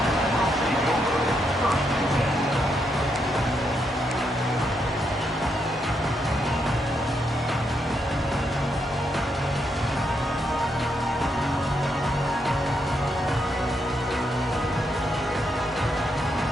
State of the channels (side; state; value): both; normal; correlation 0.79